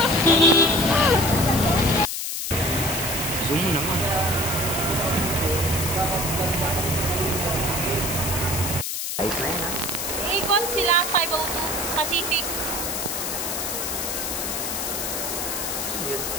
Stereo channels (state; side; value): noise; left; hiss, 3 dB below the sound